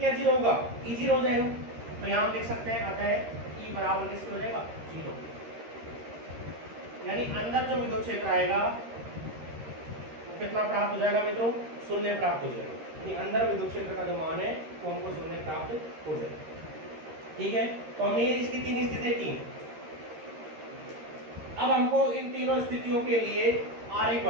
0 होगा, ई 0 हो जाएगा। तो यहाँ हम लिख सकते हैं अतः ई बराबर किसके हो जाएगा, 0। यानी अंदर जो विद्युत क्षेत्र आएगा वो कितना प्राप्त हो जाएगा मित्रों, शून्य प्राप्त हो जाएगा। यानी अंदर विद्युत क्षेत्र का जो मान है वो हमको शून्य प्राप्त हो जाएगा। ठीक है, तो हमने इसकी 3 स्थितियां की। अब हमको इन तीनों स्थितियों के लिए आरेख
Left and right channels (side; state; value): left; late; 13 ms